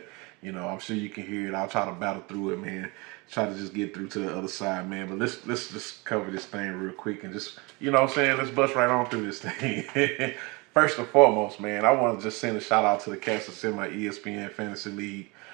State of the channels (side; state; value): left; quieter; 27.1 dB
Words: I'm sure you can hear it. I'll try to battle through it, man. Try to just get through to the other side, man. But let's just cover this thing real quick and just, what I'm saying, let's bust right on through this thing. First and foremost, man, I want to just send a shout out to the cats that's in my ESPN Fantasy League.